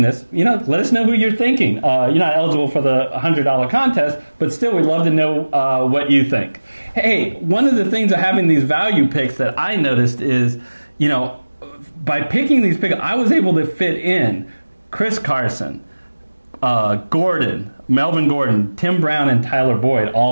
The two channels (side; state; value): both; inverted; correlation -1.00